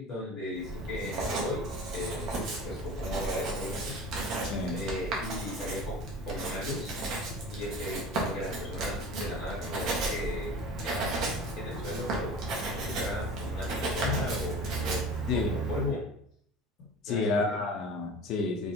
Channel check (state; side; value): normal; both; correlation 0.38